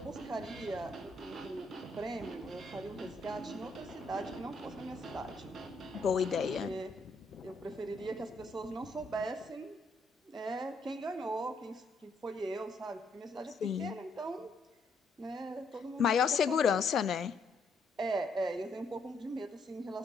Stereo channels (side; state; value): right; quieter; 3.0 dB